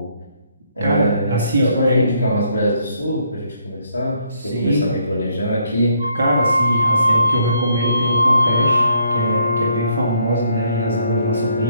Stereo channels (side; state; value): both; inverted; correlation -0.70